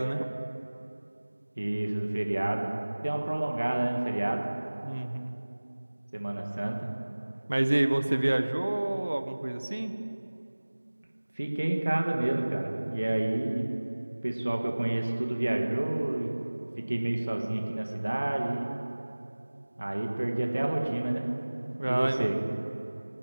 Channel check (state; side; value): inverted; both; correlation -1.00